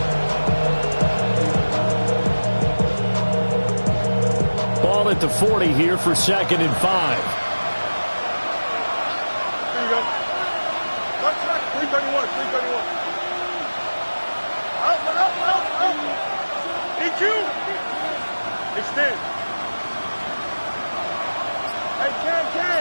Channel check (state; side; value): inverted; both; correlation -1.00